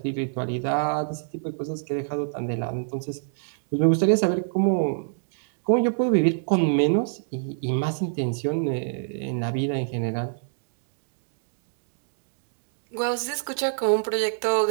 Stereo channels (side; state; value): left; silent; digital silence